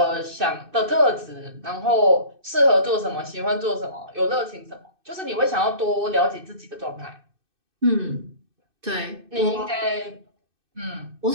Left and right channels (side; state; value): left; late; 2.6 ms